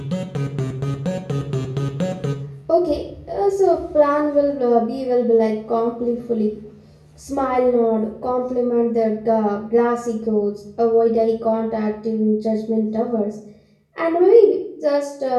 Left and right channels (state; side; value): identical; both; correlation 1.00